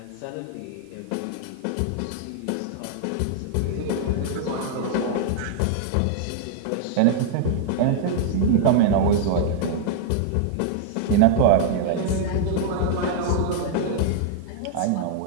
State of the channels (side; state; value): both; different; correlation -0.01